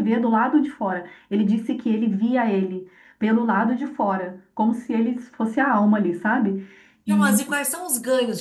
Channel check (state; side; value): identical; both; correlation 1.00